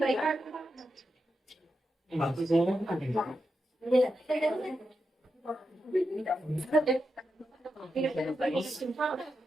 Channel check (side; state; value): both; normal; correlation 0.87